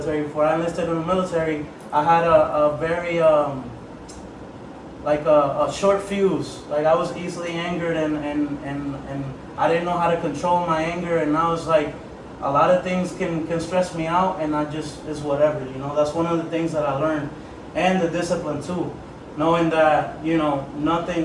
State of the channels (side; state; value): both; identical; correlation 1.00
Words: Before I enlisted in the military, I had a very a short fuse. Like, I was easily angered, and I didn't know how to control my anger, and now it's like a lot of things can stress me out, and it's whatever. That's one of the things that I learned. And the discipline too. Knowing that